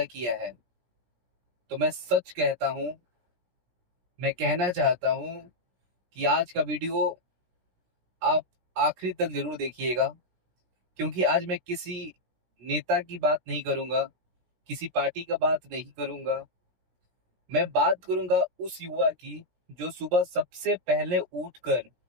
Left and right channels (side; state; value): left; late; 17 ms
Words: किया है, तो मैं सच कहता हूं, मैं कहना चाहता हूं कि आज का वीडियो आप आखिरी तक जरूर देखिएगा। क्योंकि आज मैं किसी नेता की बात नहीं करूंगा, किसी पार्टी का बात नहीं करूंगा। मैं बात करूंगा उस युवा की जो सुबह सबसे पहले उठकर